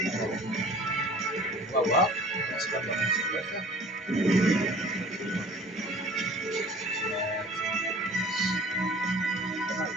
On va voir. Non, c'est pas vraiment ce qu'il va faire.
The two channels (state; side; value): normal; both; correlation 0.47